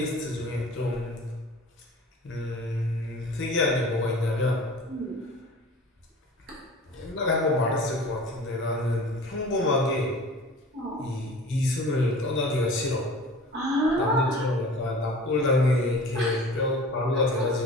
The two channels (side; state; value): both; normal; correlation 0.41